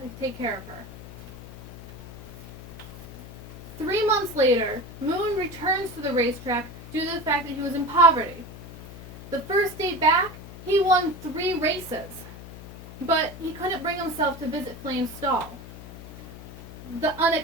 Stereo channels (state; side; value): noise; left; hum, 14 dB below the sound